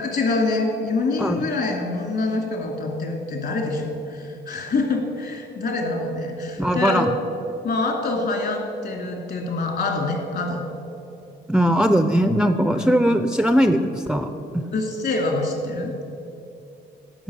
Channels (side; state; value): both; normal; correlation 0.68